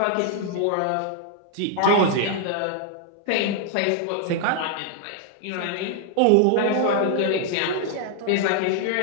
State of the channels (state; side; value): different; both; correlation 0.00